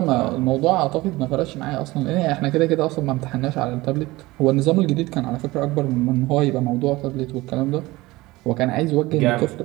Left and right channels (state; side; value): quieter; left; 20.0 dB